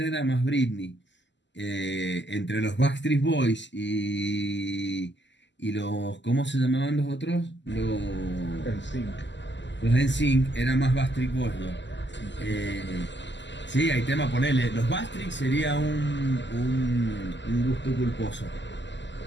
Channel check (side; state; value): right; late; 0.53 ms